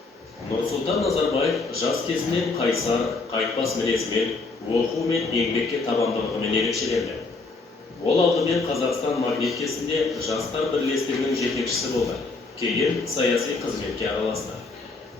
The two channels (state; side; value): quieter; right; 3.8 dB